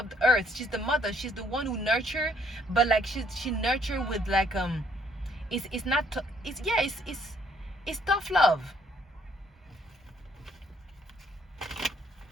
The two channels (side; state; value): both; normal; correlation 0.66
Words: She's the mother. She's the one who nurture, but like she nurture with like it's tough love.